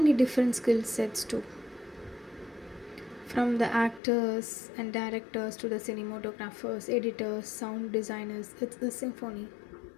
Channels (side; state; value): right; drops out; at 4.0 s